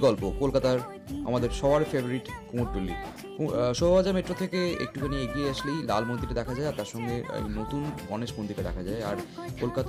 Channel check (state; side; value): identical; both; correlation 1.00